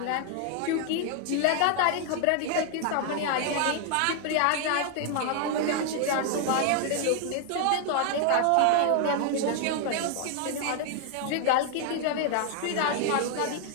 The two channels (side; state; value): both; different; correlation 0.00